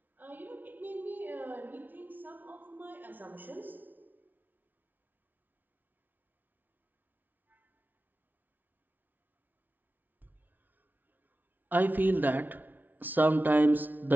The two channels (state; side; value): late; left; 0.083 ms